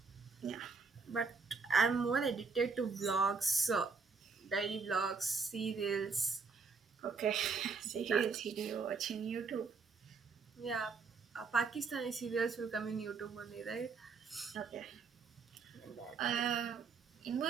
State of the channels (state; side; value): quieter; left; 4.9 dB